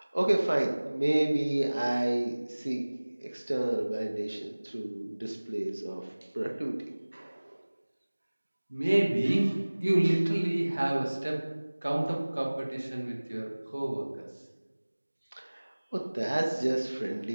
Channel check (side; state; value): both; inverted; correlation -1.00